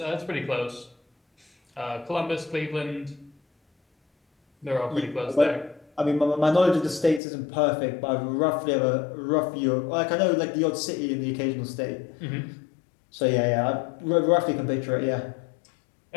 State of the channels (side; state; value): right; drops out; at 7.2 s